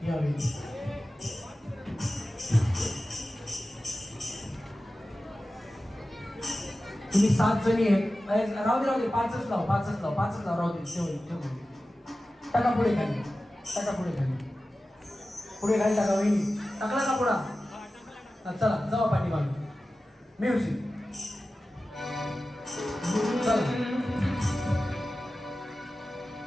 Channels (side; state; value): both; normal; correlation 0.95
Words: या वहिनी तुम्ही 7 जणी आहेत राहू दे 5च लाव राहू दे ठेवून टाका पुढे खाली पुढे खाली टाका वहिनी टाकला का पुढा चला जावा पाठी मागे म्युझिक